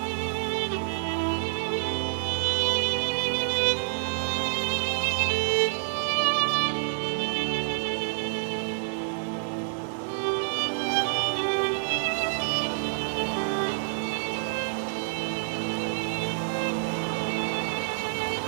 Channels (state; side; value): silent; left; digital silence